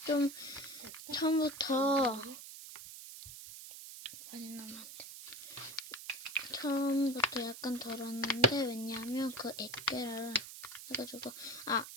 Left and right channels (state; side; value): noise; right; hiss, 12 dB below the sound